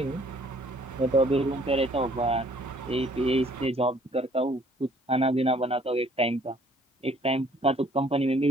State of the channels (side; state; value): both; normal; correlation 0.59